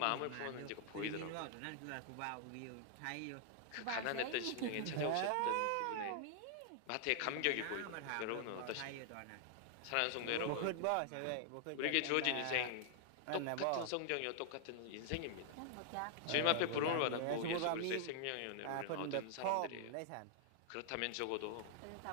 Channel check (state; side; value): different; both; correlation -0.01